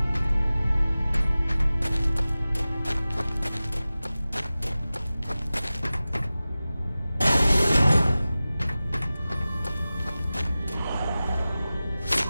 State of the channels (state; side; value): inverted; both; correlation -0.96